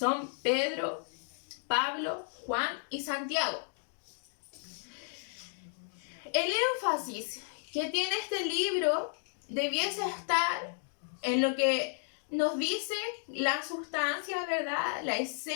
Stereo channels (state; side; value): silent; right; 56 dB below the other